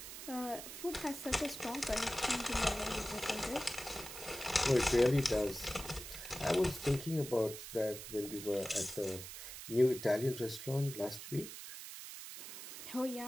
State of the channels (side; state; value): right; noise; hiss, 10 dB below the sound